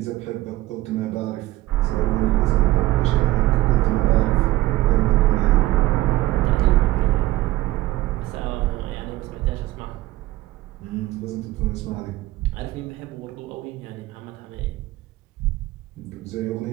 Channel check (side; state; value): left; quieter; 16.9 dB